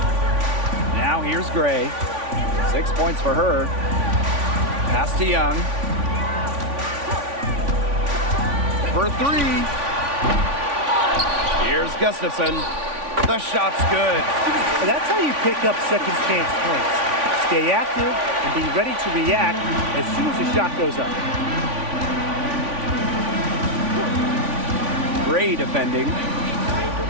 Now here's Gray. 6 points for her. Pass to Young. For 3. Here's Gustafson. The shot's good. And that's how you pick up second chance points. Stay active and be ready to react as soon as the shot goes up. Gray defending.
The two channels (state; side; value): late; left; 3.5 ms